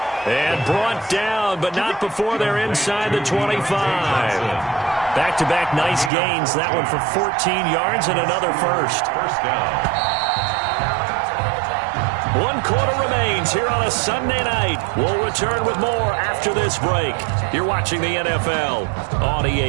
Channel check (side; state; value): left; drops out; at 6.1 s